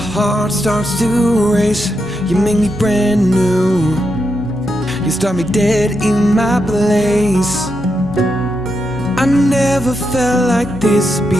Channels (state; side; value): normal; both; correlation 0.84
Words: starts to race. You make me brand new, you start me dead in my place. I never felt like this